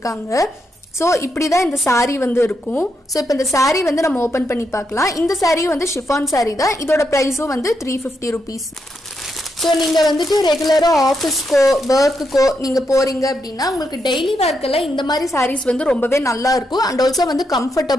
ஸோ இப்படி தான் இந்த சாரீ வந்து இருக்கும். ஸோ இப்போ இந்த சாரீ வந்து நம்ம ஓப்பன் பண்ணி பார்க்கலாம். இந்த சாரீ வந்து ஷிஃபான் சாரீ தான். இதோட ப்ரைஸும் வந்து 350 rupees. ஸோ நீங்கள் வந்துட்டு ரெகுலராக ஆஃபீஸ்க்கோ ஒர்க்குக்கோ நீங்கள் போகிறீங்க அப்படின்னா உங்களுக்கு டெய்லி ஒர்க்கெல்லாம் இந்த மாதிரி சாரீஸ் வந்து ரொம்பவே நல்லா இருக்கும். அண்ட் ஆல்சோ வந்து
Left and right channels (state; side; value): normal; both; correlation 0.82